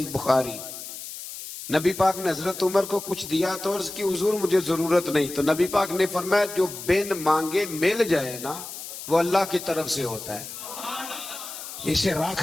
بخاری، نبی پاک نے حضرت عمر کو کچھ دیا تو عرض کی حضور مجھے ضرورت نہیں، تو نبی پاک نے فرمایا جو بن مانگے مل جائے نا وہ اللہ کی طرف سے ہوتا ہے، اسے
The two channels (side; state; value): left; noise; hiss, 10 dB below the sound